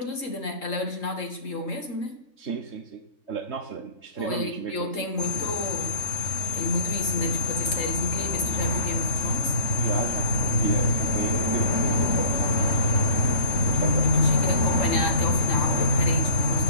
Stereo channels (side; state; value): right; late; 3.8 ms